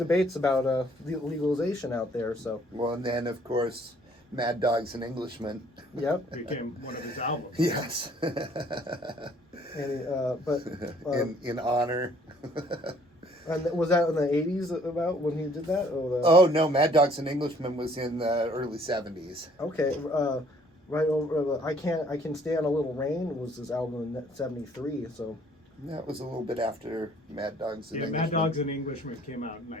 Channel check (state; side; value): normal; both; correlation 0.60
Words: about legalization out there. So Well, and then, of course, Mad Dog's an Englishman. yep. Became one of his albums. Yes. And in honor. and was that in the 80s about when he did that? Or Oh, no, Mad Dog's an Englishman was in the early 70s. okay. Right over. I can stand a little rain was his album in '73. So That was a little bit after Mad Dog's an Yeah, Englishman. Mad Dogs and Englishmen came out in